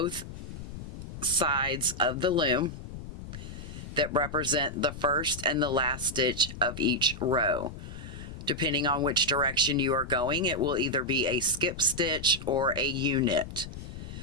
sides of the loom that represent the first and the last stitch of each row. Depending on which direction you are going, it will either be a skip stitch or a U-knit.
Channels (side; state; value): left; noise; rumble, 11 dB below the sound